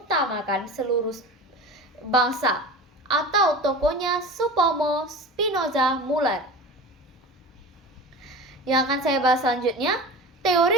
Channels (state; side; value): normal; both; correlation 0.33